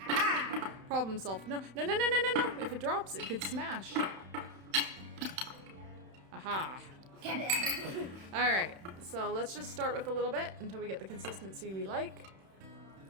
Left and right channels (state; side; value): late; left; 31 ms